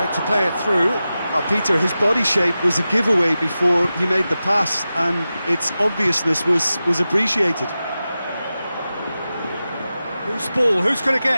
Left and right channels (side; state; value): both; inverted; correlation -0.93